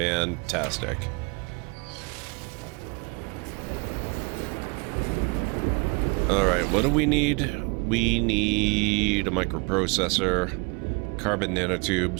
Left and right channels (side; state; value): left; quieter; 30.2 dB